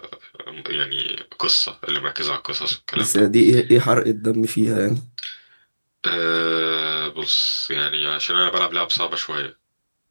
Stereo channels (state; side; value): inverted; both; correlation -1.00